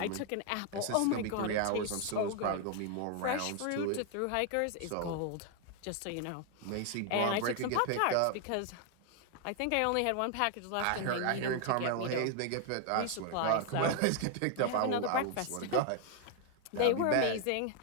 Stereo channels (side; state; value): both; different; correlation 0.00